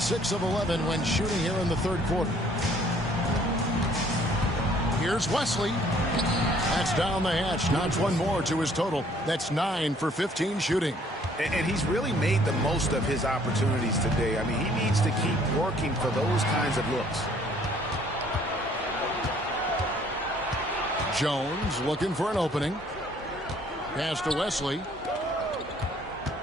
of 11 when shooting here in the third quarter. Here's Wesley. That's down the hatch. Notch one more to his total. That's 9 for 15 shooting. And he's really made the most of his opportunities today. I mean, he needs to keep working for those kinds of looks. Jones looking for an opening. Pass to Wesley.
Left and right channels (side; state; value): both; normal; correlation 0.60